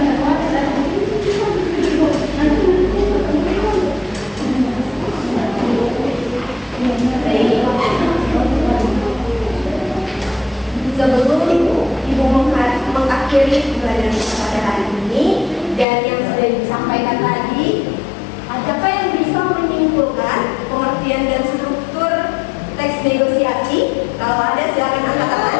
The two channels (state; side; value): drops out; right; at 15.9 s